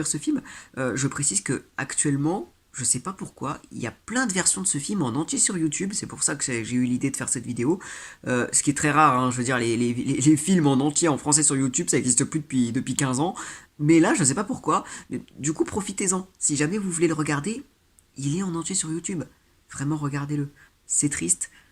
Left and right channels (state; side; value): identical; both; correlation 1.00